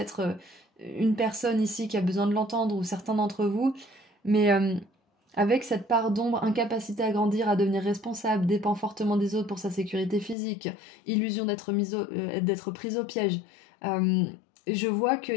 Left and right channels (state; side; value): drops out; right; at 10.4 s